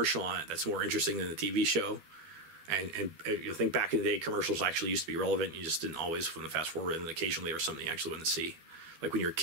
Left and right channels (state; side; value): late; left; 12 ms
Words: on it that's more interesting than the TV show? And you think back in the day, commercials actually used to be relevant. You just didn't always want to fast forward, and occasionally there was something you actually wanted to see. Like when you were a